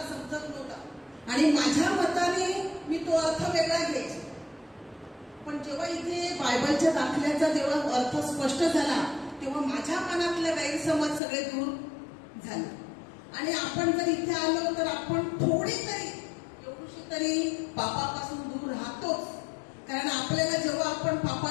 समजत नव्हता आणि माझ्या मताने मी तो अर्थ वेगळा घ्यायचा, पण जेव्हा इथे बायबलच्या दाखल्याचा जेव्हा अर्थ स्पष्ट झाला तेव्हा माझ्या मनातले गैरसमज सगळे दूर झाले. आणि आपण जर इथे आलो तर आपण थोडी तरी एवढीशी तरी पापापासून दूर राहतोच. कारण आपल्याला जेव्हा आपण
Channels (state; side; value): drops out; right; at 11.2 s